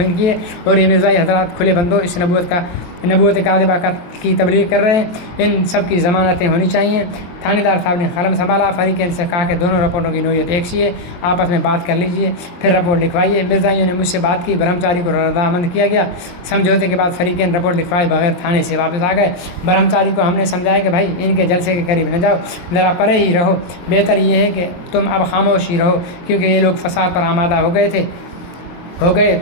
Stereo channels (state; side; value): late; right; 23 ms